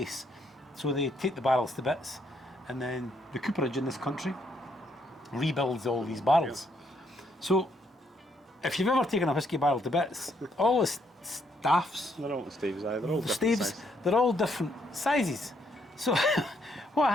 So they take the barrels to bits, and then the cooperage in this country rebuilds all these barrels. So if you've ever taken a whiskey barrel to bits, all the staffs, They're all staves, they're all the different staves, size. they're all different sizes. So what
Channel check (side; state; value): both; normal; correlation 0.73